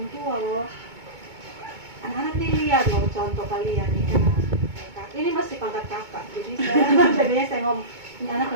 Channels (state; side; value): late; left; 2.2 ms